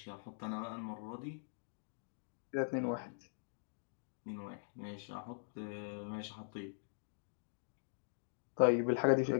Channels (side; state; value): right; silent; digital silence